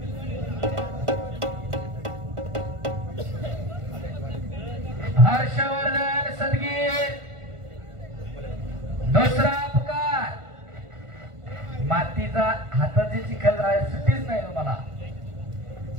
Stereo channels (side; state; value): left; late; 1.5 ms